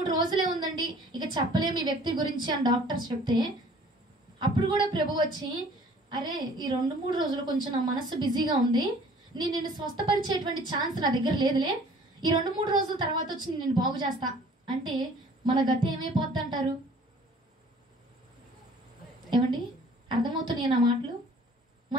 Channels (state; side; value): normal; both; correlation 0.52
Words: రోజులే ఉందండి, ఇక చెప్పలేము ఈ వ్యక్తి గురించి అని డాక్టర్స్ చెప్తే, అప్పుడు కూడా ప్రభు వచ్చి, అరే ఈ 2-3 రోజులు కొంచెం నా మనసు బిజీగా ఉంది, నిన్ను స్వస్థపరిచేటువంటి ఛాన్స్ నా దగ్గర లేదులే, ఈ 2-3 రోజుల తర్వాత వచ్చి నేను బాగు చేస్తా అంటే మన గతి ఏమైపోద్ది అంటారు? ఏమండి, అర్థమవుతున్నాయి నా మాటలు?